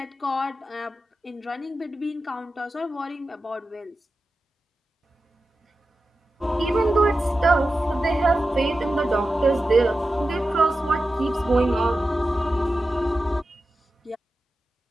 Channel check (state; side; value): normal; both; correlation 0.92